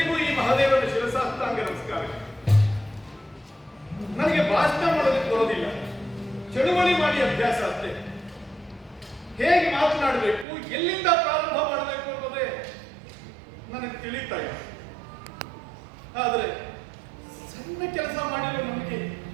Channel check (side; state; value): left; drops out; at 10.5 s